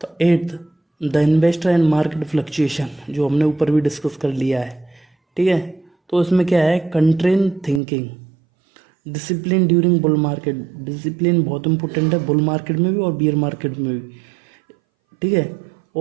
तो 8th, the investor and market fluctuation, जो हमने ऊपर भी डिस्कस कर लिया है। ठीक है, तो इसमें क्या है, contrarian thinking, discipline during bull market. Discipline बहुत इंपॉर्टेंट है बुल मार्केट में भी और बियर मार्केट में भी। ठीक है,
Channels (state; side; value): drops out; left; at 7.8 s